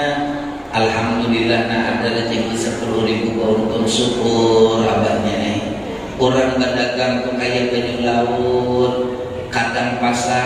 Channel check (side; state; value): both; identical; correlation 1.00